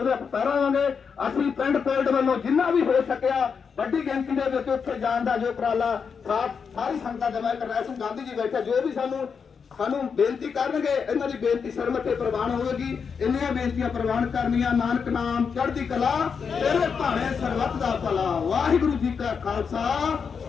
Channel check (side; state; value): right; quieter; 6.1 dB